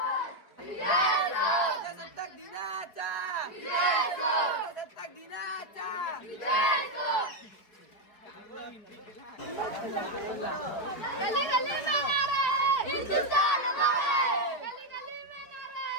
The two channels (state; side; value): late; right; 4.9 ms